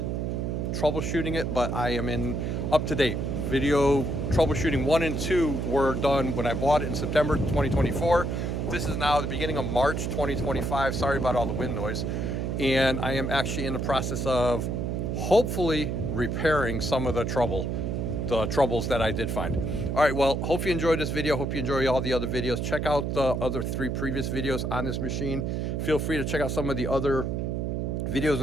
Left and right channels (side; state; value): right; noise; hum, 1 dB below the sound